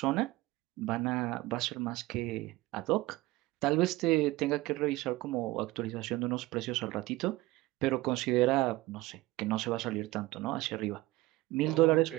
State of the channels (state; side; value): quieter; left; 19.2 dB